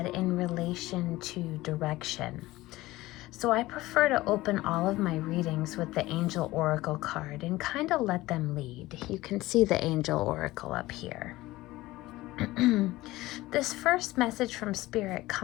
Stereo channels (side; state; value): right; quieter; 18.2 dB